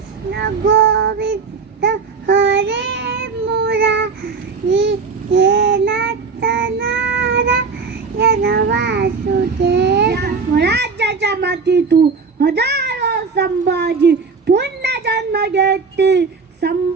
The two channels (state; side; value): quieter; left; 4.9 dB